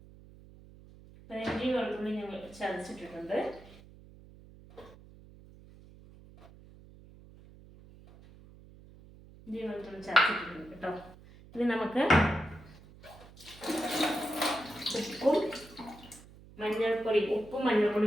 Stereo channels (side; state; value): right; noise; hum, 21 dB below the sound